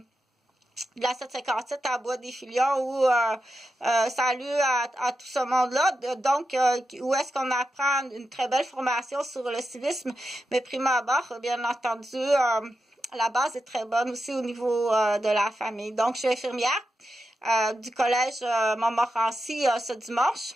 de la 757 à Bois-des-Filions où salut à tout ce monde-là. Donc, où est-ce qu'on apprend une très belle formation sur le civisme, mais prime abord, bien entendu, la base est très bonne aussi au niveau de la famille. Donc, je suis infirmière du collège Montmorency ce dimanche.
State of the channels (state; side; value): normal; both; correlation 0.89